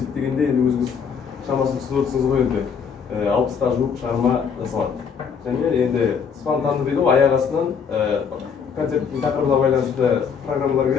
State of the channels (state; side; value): quieter; right; 6.5 dB